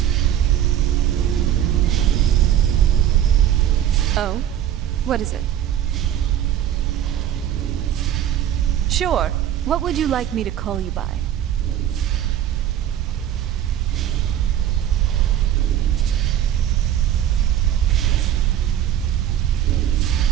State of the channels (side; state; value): left; quieter; 10.9 dB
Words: Oh? What is it? Sure. What would you like me to call you by?